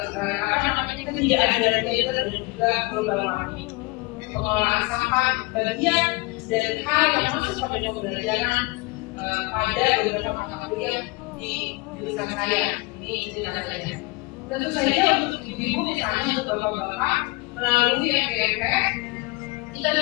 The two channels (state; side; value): quieter; right; 25.0 dB